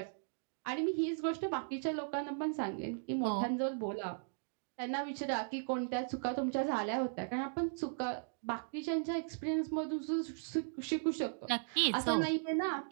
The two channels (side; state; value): left; silent; digital silence